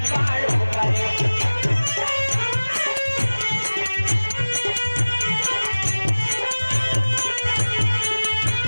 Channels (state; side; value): inverted; both; correlation -1.00